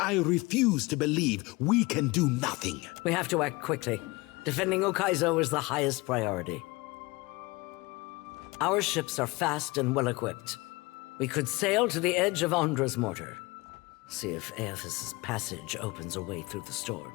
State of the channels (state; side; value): quieter; right; 23.6 dB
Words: refuse to believe we can do nothing. We have to act quickly. Defending Ukaizo is the highest priority. Our ships are fast and well-equipped. We could sail to the edge of Andra's mortar. See if Aethys' passage opens a way through the